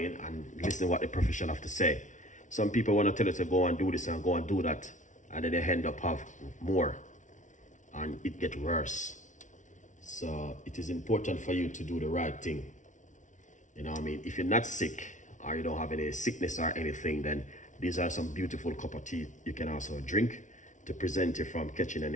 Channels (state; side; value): late; right; 0.37 ms